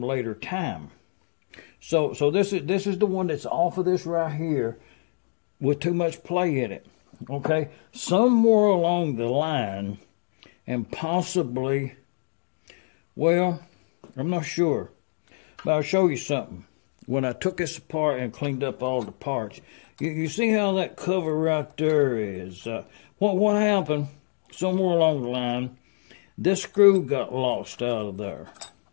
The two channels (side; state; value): right; silent; digital silence